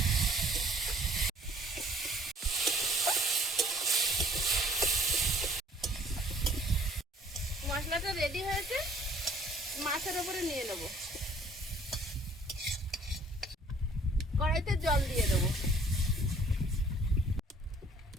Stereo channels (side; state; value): both; normal; correlation 0.56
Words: মশলাটা রেডি হয়েছে, মাছের উপরে নিয়ে নেব। কড়াইতে জল দিয়ে দেবো,